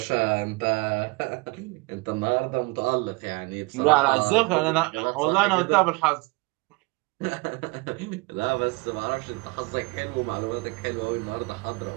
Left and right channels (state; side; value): quieter; left; 26.5 dB